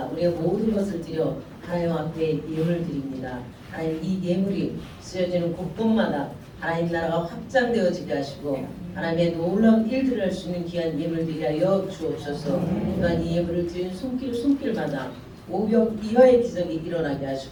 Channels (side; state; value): both; identical; correlation 1.00